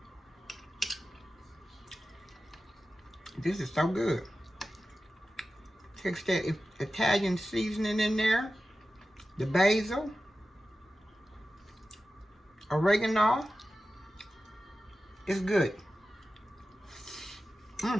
This is so good. Takes that Italian seasoning in there. The basil. Oregano. It's good.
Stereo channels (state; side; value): normal; both; correlation 0.94